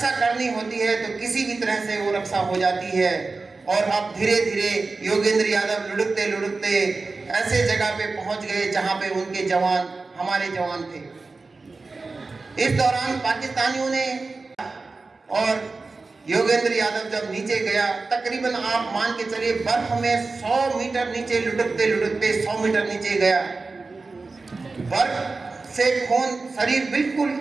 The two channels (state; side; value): quieter; left; 3.8 dB